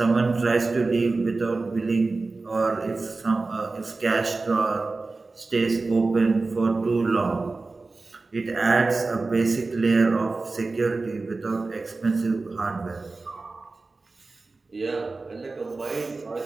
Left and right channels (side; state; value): left; quieter; 3.6 dB